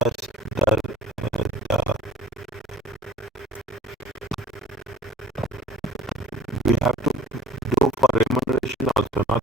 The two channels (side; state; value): both; normal; correlation 0.51